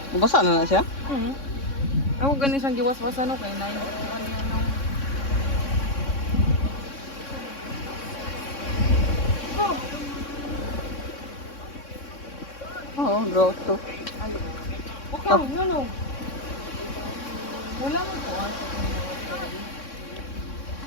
Mabasa na siya? Ako ganin siyang giwas-wasan no kay nay. Oo, grotto. Okay, no. Wala mo po.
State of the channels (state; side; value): late; right; 3.6 ms